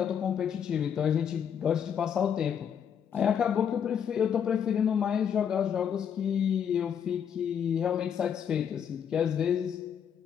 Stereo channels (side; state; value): right; quieter; 8.1 dB